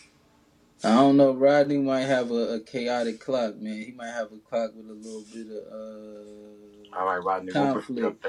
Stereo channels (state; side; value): identical; both; correlation 1.00